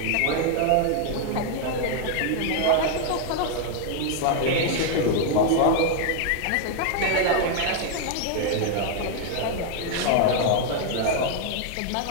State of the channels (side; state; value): both; different; correlation 0.00